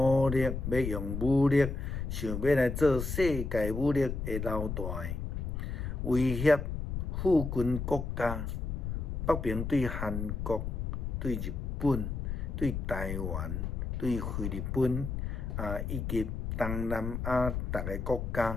力要用武力，想要来做世界武力的老大，威胁附近国家，北平对韩国、对日本、对台湾、对菲律宾以及东南亚逐个国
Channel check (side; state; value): left; noise; rumble, 3 dB below the sound